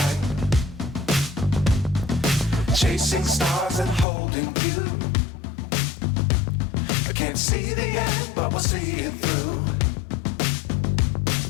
Chasing stars and holding you. I can't see the end, but we'll see it through.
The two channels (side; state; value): right; drops out; at 4.0 s